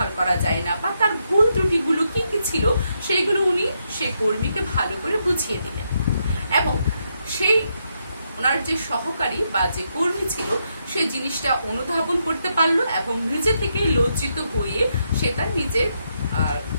করা যায় না, বা তার ভুল ত্রুটিগুলো কি কি ছিল সেইগুলো উনি সেই কর্মীকে ভালো করে বুঝিয়ে দিলেন। এবং সেই ওনার যে সহকারী বা যে কর্মী ছিল সে জিনিসটা অনুধাবন করতে পারলো এবং নিজে থেকে লজ্জিত হয়ে সে তার নিজের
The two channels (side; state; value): both; inverted; correlation -0.80